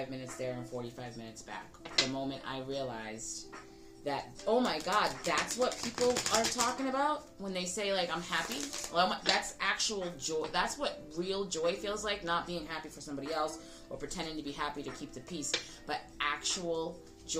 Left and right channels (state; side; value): identical; both; correlation 1.00